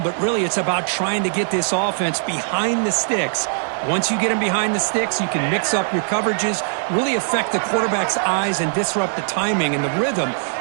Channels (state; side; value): silent; left; digital silence